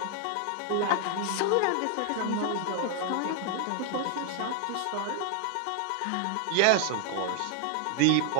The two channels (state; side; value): different; both; correlation 0.00